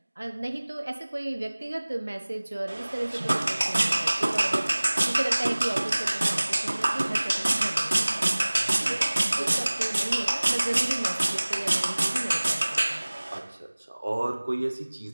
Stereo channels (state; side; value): inverted; both; correlation -1.00